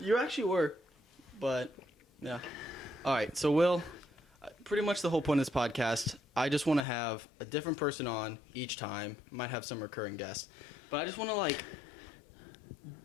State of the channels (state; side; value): drops out; right; at 6.9 s